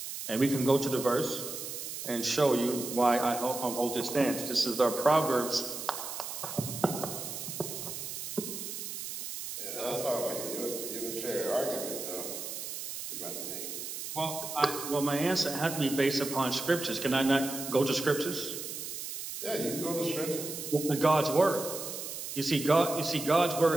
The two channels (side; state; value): right; noise; hiss, 7 dB below the sound